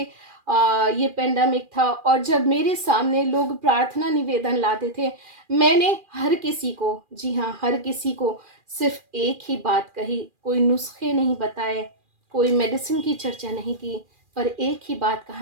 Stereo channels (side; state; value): left; late; 2.4 ms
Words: पेंडेमिक था, और जब मेरे सामने लोग प्रार्थना निवेदन लाते थे, मैंने हर किसी को, जी हाँ हर किसी को, सिर्फ एक ही बात कही। कोई नुस्खे नहीं बताए, कोई मेडिसिन की चर्चा नहीं की, पर एक ही बात कहा